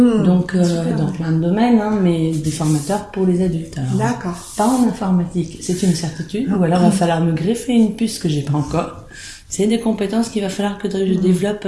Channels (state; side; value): identical; both; correlation 1.00